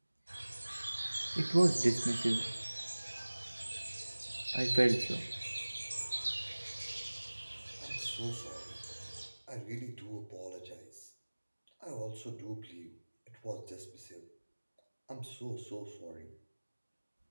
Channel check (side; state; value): both; inverted; correlation -1.00